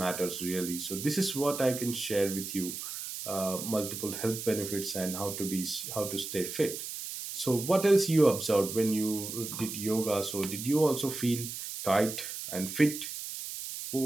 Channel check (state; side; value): noise; right; hiss, 7 dB below the sound